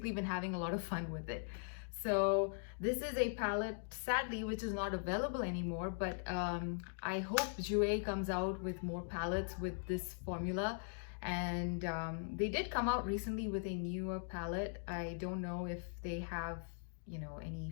been having a lot of fun with it. So this is a palette, sadly, which is not available anymore, but I hope Jouer comes out with more palettes with this formula. And they did come out recently with a newer palette. I don't know if they have, you know, any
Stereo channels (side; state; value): right; silent; digital silence